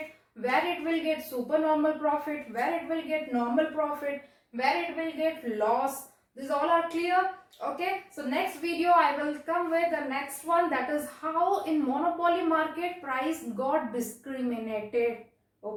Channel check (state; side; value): identical; both; correlation 1.00